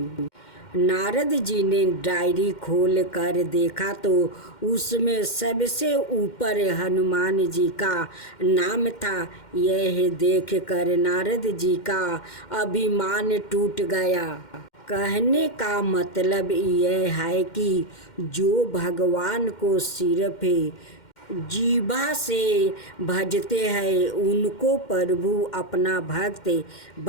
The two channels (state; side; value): late; right; 2.1 ms